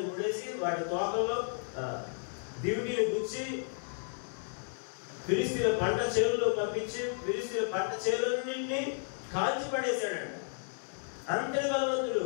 ముడేసి వాటి తోకల్లో దివిటీని గుచ్చి ఫిలిస్తీయుల పంట చేనులో పంపించి ఫిలిస్తీయుల పంట చేనులన్నింటినీ కాల్చి పడేశాడంట. అంతటి బలవంతుడు.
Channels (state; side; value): silent; right; digital silence